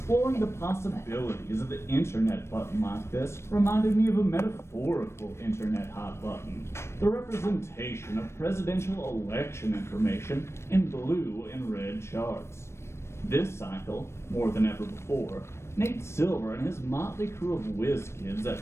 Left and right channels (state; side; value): late; right; 0.13 ms